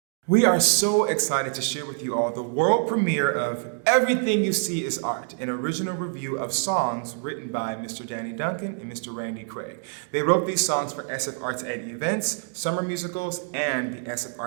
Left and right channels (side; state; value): left; silent; digital silence